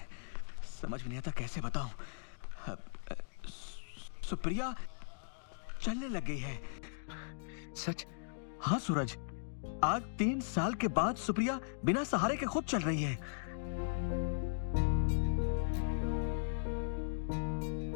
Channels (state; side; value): silent; right; digital silence